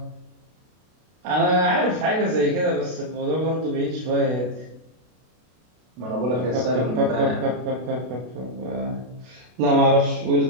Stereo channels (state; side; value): late; left; 32 ms